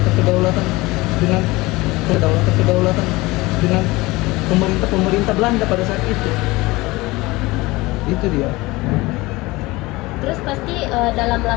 kedaulatan dengan pemerintah Belanda pada saat itu. Itu dia. Terus pasti dalam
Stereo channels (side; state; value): right; quieter; 21.3 dB